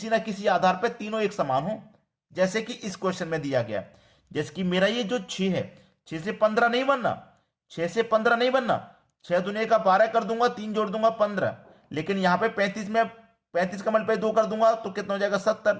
ना किसी आधार पर तीनों एक समान हो, जैसे कि इस क्वेश्चन में दिया गया। जैसे कि मेरा ये जो 6 है, 6 से 15 नहीं बनना, 6 से 15 नहीं बनना। 6 दुनिया का 12 कर दूंगा, 3 जोड़ दूंगा 15। लेकिन यहां पे 35 में 35 का मल्टीप्लाई 2 कर दूंगा तो कितना हो जाएगा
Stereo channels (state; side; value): identical; both; correlation 1.00